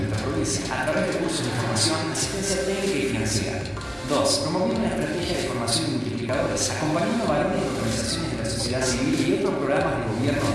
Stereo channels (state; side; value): identical; both; correlation 1.00